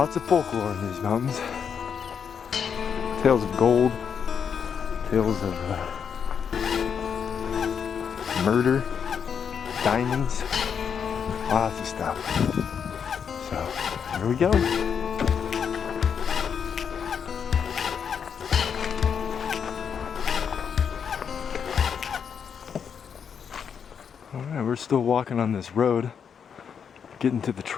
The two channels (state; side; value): quieter; right; 7.2 dB